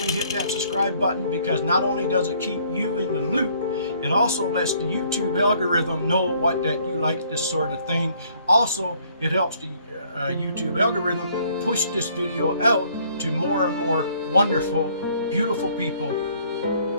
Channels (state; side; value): inverted; both; correlation -0.62